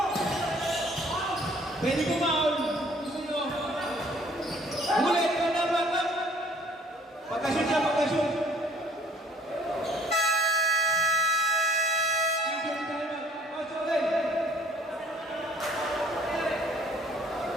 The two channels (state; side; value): normal; both; correlation 0.58